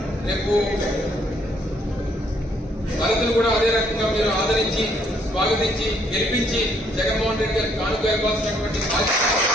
రేపు భరతులు కూడా అదే రకంగా మీరు ఆదరించి స్వాగతించి గెలిపించి జగన్మోహన్ రెడ్డి గారికి కానుక ఇవ్వాల్సినటువంటి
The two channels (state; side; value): normal; both; correlation 0.68